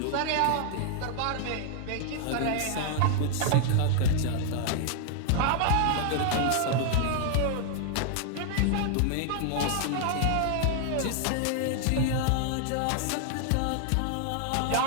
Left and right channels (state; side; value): different; both; correlation 0.00